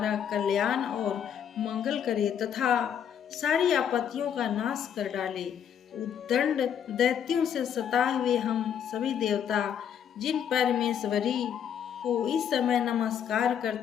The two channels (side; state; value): right; quieter; 8.7 dB